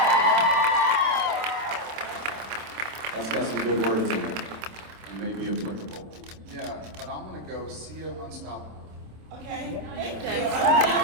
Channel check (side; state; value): left; late; 26 ms